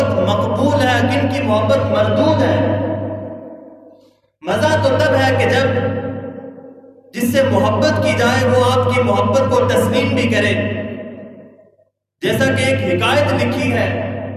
مقبول ہے، کن کی محبت مردود ہے۔ مزہ تو تب ہے کہ جب جس سے محبت کی جائے وہ آپ کی محبت کو تسلیم بھی کرے۔ جیسا کہ ایک حکایت لکھی ہے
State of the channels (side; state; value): both; identical; correlation 1.00